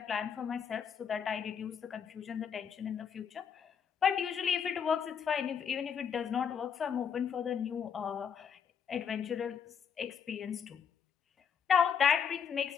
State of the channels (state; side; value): quieter; right; 7.4 dB